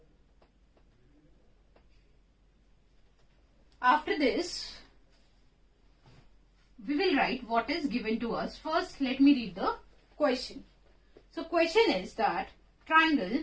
After this, we will write what is given to us. First, let me read the question. So, question is that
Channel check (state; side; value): identical; both; correlation 1.00